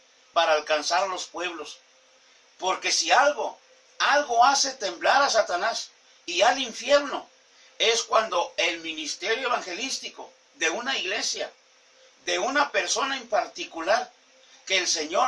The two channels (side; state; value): both; identical; correlation 1.00